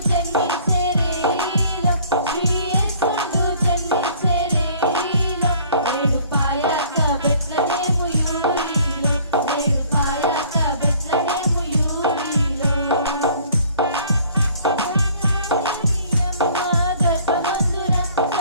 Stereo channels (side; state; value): both; inverted; correlation -0.55